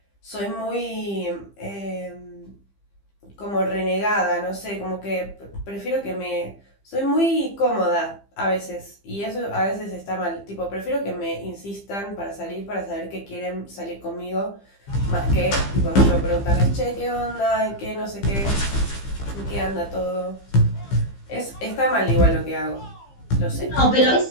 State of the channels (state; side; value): late; right; 15 ms